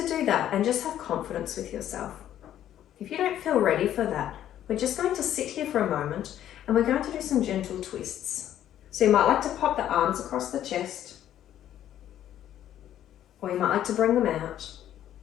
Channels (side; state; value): right; quieter; 11.4 dB